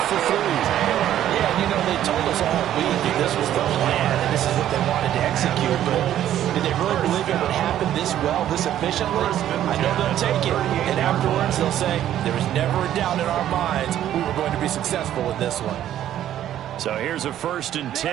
for 3. Yeah, you know, they told us all week that this was the plan and this is what they wanted to execute. But did they really believe it would happen this well, this efficiently? I know they'll take it. And afterwards, they'll say, there was never a doubt in our minds we were going to be successful with this one. So here's a 1st and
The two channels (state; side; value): quieter; left; 11.7 dB